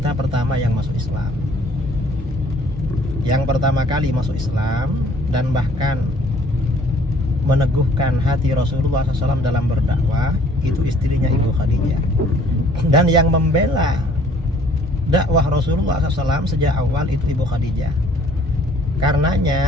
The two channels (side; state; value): both; normal; correlation 0.58